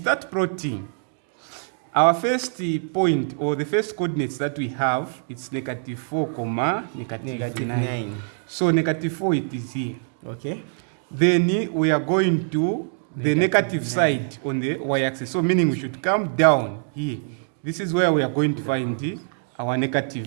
plotting. Our first point, or the first coordinates that we have, it's -4, negative 9. So -4, it is here. Okay. Then we are going to the negative 9 side on the y-axis. So meaning we should come down here. This is where we are going to find our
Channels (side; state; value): left; silent; digital silence